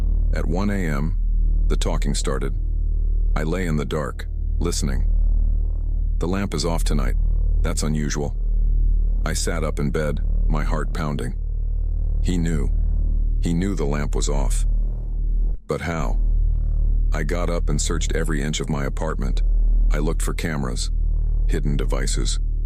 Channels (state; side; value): identical; both; correlation 1.00